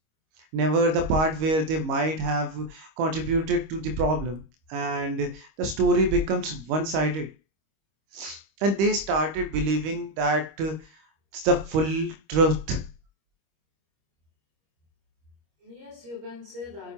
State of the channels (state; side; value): late; left; 25 ms